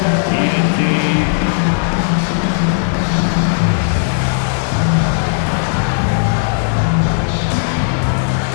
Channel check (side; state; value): right; silent; digital silence